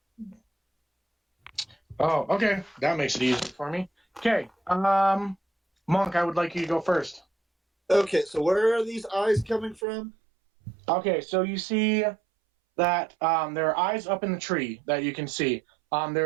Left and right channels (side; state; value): left; drops out; at 9.8 s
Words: Oh, okay. That makes it easy for me. Okay. Monk, I would like you to go first. Okay, so where are these eyes coming from? Okay, so you see that there are eyes up in the tree that you can see.